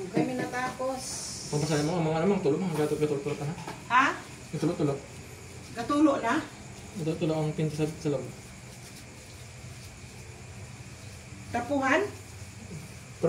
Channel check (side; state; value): both; identical; correlation 1.00